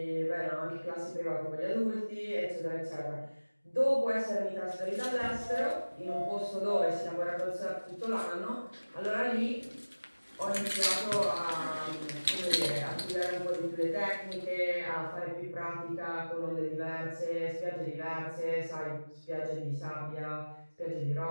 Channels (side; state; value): both; inverted; correlation -1.00